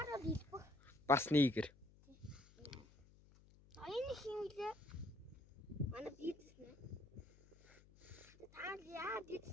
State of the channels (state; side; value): noise; left; hum, 24 dB below the sound